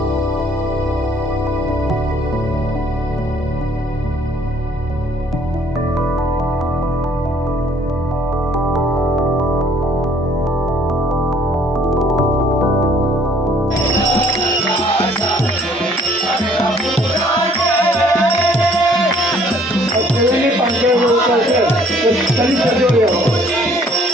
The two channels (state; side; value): normal; both; correlation 0.60